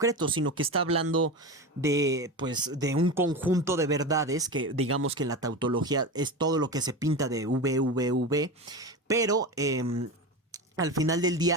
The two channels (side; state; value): both; normal; correlation 0.23